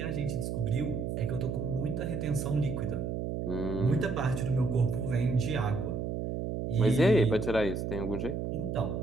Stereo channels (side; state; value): right; noise; hum, 3 dB below the sound